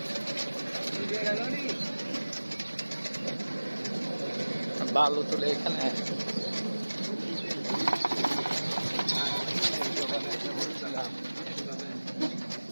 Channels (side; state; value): both; inverted; correlation -1.00